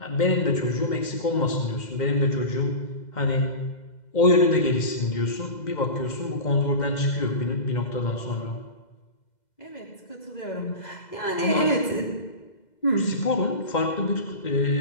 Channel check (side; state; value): right; late; 2.0 ms